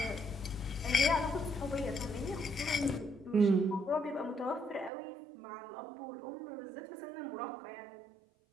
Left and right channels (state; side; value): drops out; left; at 4.9 s